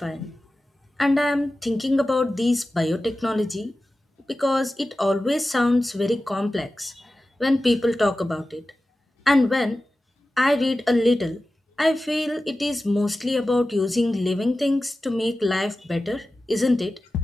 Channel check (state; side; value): normal; both; correlation 0.95